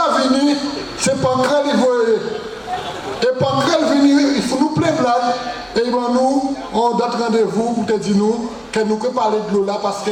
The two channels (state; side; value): identical; both; correlation 1.00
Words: venu, c'est Pancrel, et Pancrel venu, il faut nous plaindre là, et ben nous, on donne rendez-vous pour te dire nous, que nous pouvons parler de l'eau là, parce